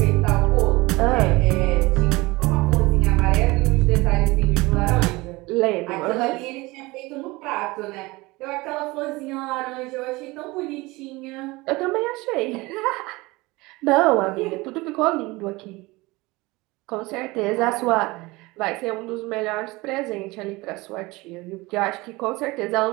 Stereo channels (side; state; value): left; quieter; 22.2 dB